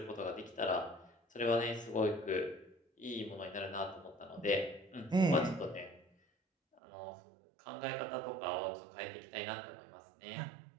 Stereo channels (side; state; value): left; drops out; at 6.8 s